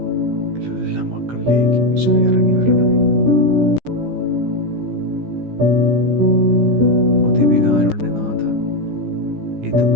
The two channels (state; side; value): late; left; 15 ms